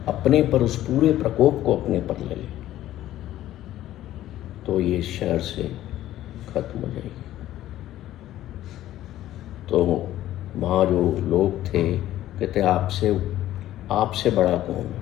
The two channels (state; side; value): quieter; right; 13.7 dB